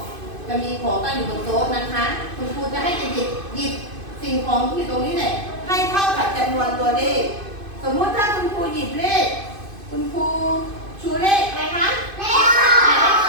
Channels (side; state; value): left; late; 2.5 ms